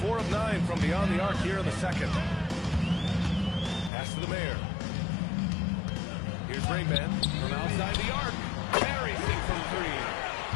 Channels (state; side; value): drops out; right; at 3.9 s